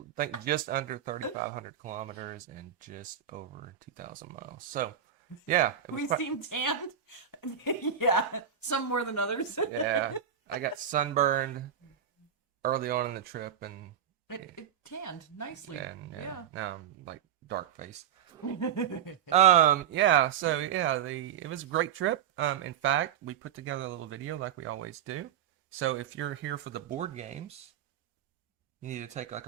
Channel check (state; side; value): quieter; left; 8.9 dB